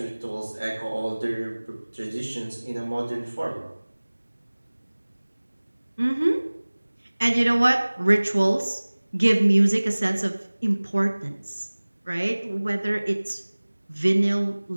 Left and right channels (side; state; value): both; inverted; correlation -1.00